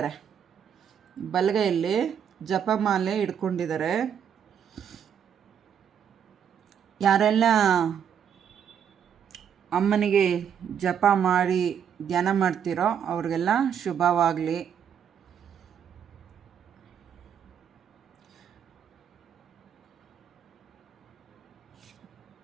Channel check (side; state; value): left; quieter; 8.3 dB